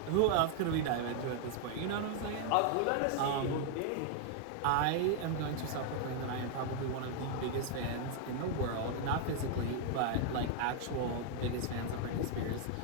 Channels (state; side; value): different; both; correlation 0.00